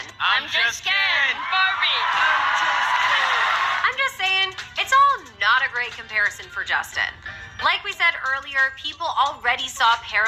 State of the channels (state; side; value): identical; both; correlation 1.00